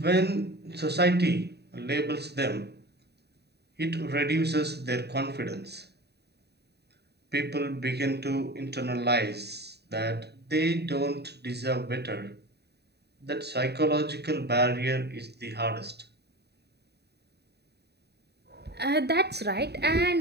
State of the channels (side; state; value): left; late; 0.48 ms